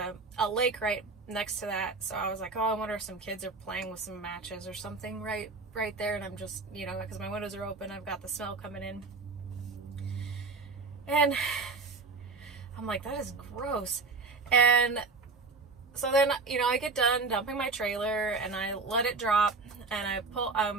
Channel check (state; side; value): quieter; left; 4.1 dB